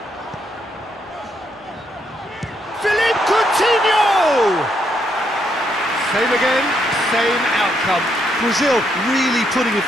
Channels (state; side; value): normal; both; correlation 0.76